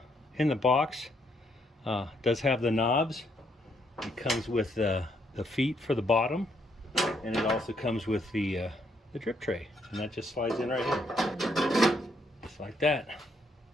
box does have the knobs. It comes with the feet for the bottom, and it also comes with the drip tray, and that just slides in right here, just like that.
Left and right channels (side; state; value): both; normal; correlation 0.73